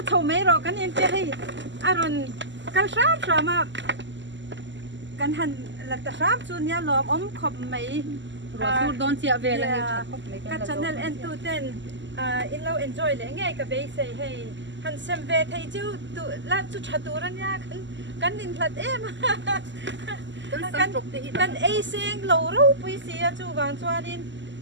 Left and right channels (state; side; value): late; left; 0.54 ms